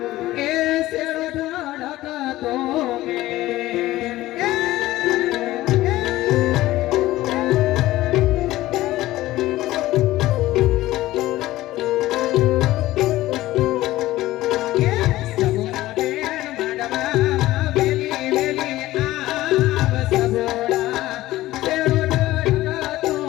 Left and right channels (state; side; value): quieter; right; 16.4 dB